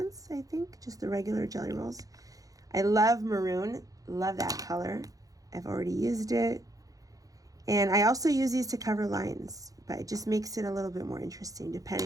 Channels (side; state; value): left; late; 0.17 ms